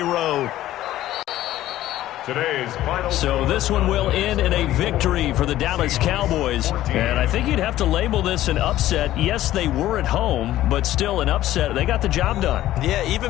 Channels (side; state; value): right; quieter; 14.2 dB